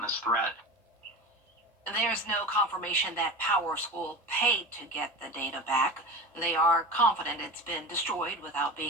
threat. There's no confirmation that PowerSchool paid to get the data back. They are confident it's been destroyed without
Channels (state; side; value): normal; both; correlation 0.29